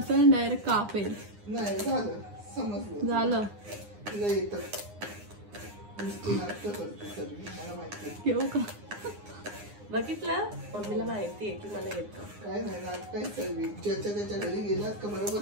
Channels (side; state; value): left; late; 9.7 ms